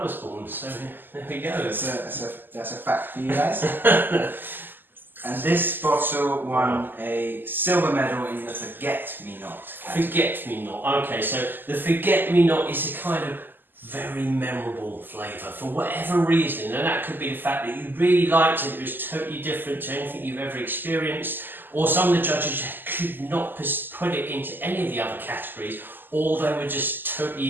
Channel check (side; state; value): left; late; 0.092 ms